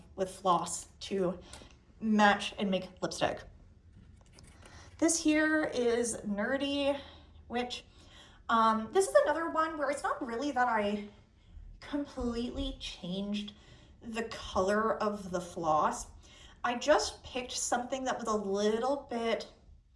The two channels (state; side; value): identical; both; correlation 1.00